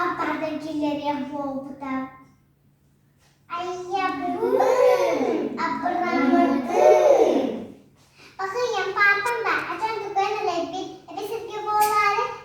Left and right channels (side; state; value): both; identical; correlation 1.00